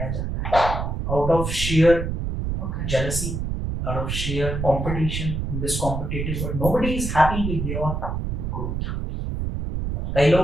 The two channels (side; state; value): right; noise; rumble, 3 dB below the sound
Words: जाता है, out of sheer jealousy, out of sheer competition in this competitive world. Nobody is happy with your growth. कई